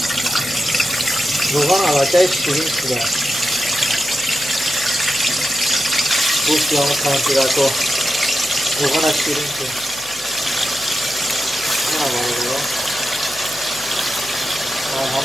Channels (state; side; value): noise; left; hum, 21 dB below the sound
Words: روغان علاقه شیرین شده. گوشتی همون کانتی رکو روغان شیرین شده. این همه روغان